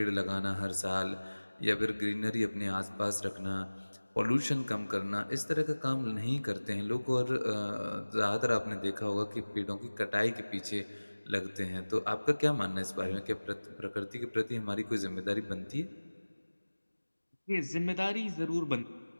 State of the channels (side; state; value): both; inverted; correlation -1.00